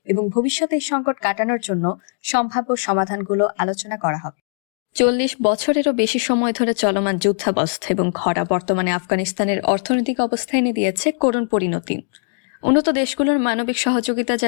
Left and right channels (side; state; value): right; silent; digital silence